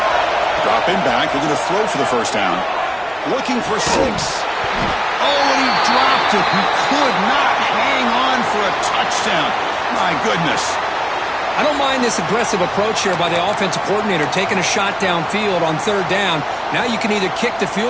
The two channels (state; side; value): identical; both; correlation 1.00